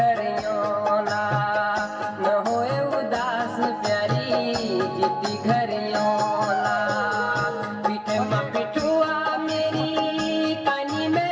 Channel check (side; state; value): both; identical; correlation 1.00